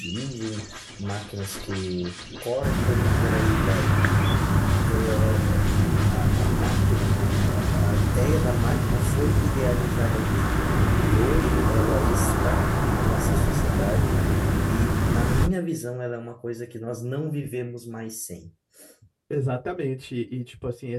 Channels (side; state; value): both; identical; correlation 1.00